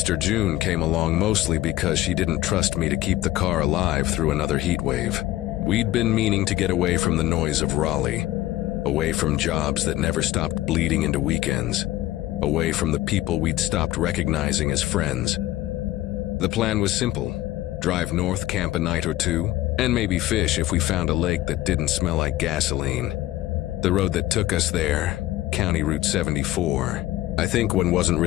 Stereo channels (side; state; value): right; quieter; 15.4 dB